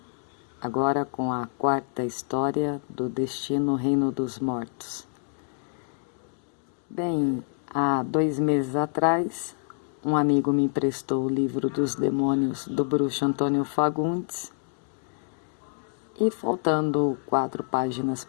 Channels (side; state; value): right; silent; digital silence